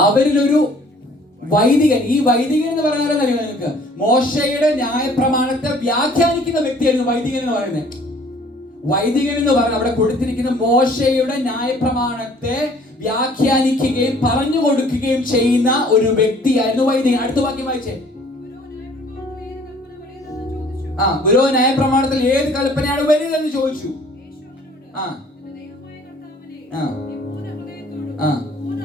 അവരിലൊരു വൈദികൻ. ഈ വൈദികൻ എന്ന് പറഞ്ഞാൽ അറിയാം നിങ്ങൾക്ക്? മോശയുടെ ന്യായപ്രമാണത്തെ വ്യാഖ്യാനിക്കുന്ന വ്യക്തിയായിരുന്നു വൈദികൻ എന്ന് പറയുന്നത്. വൈദികൻ എന്ന് പറഞ്ഞാൽ അവിടെ കൊടുത്തിരിക്കുന്ന മോശയുടെ ന്യായപ്രമാണത്തെ വ്യാഖ്യാനിക്കുകയും പറഞ്ഞു കൊടുക്കുകയും ചെയ്യുന്ന ഒരു വ്യക്തിയായിരുന്നു വൈദികൻ. അടുത്ത വാക്യം വായിച്ചേ. ഗുരു ന്യായപ്രമാണത്തിൽ ഏത് കൽപ്പനയാണ് വലുതെന്ന് ചോദിച്ചു.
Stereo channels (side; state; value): both; normal; correlation 0.55